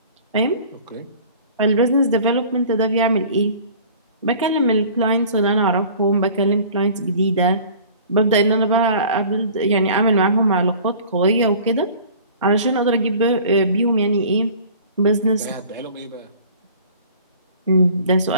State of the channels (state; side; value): inverted; both; correlation -0.46